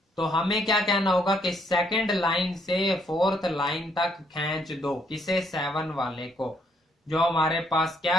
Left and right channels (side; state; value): both; normal; correlation 0.70